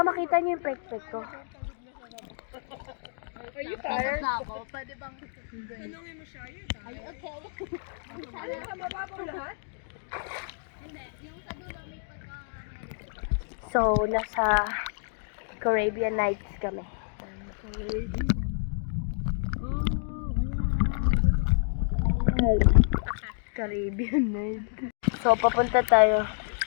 makita niyo yung pek-pek ko. Are you tired? Na ako. Pwede bang... Tanungin mo siya yun. Are you okay? Ano ka, mababaw lahat? Hindi. Yung sa dulo may pagka... So, nasa Caribbean Nights kami. Caribbean Nights. So, papunta tayo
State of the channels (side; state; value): right; silent; digital silence